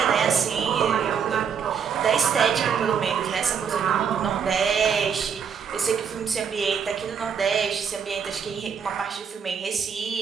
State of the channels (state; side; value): quieter; left; 7.0 dB